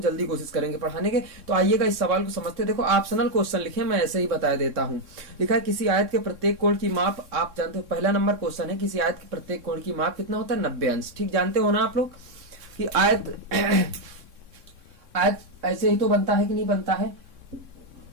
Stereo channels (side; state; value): left; late; 3.6 ms